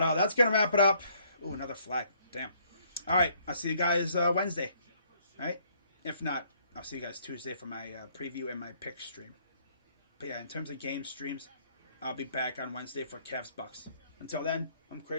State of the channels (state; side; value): inverted; both; correlation -0.64